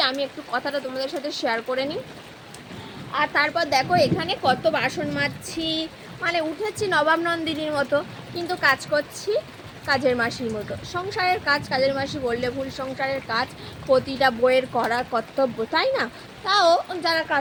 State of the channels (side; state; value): both; identical; correlation 1.00